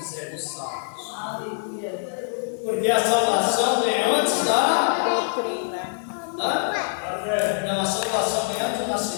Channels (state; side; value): silent; right; digital silence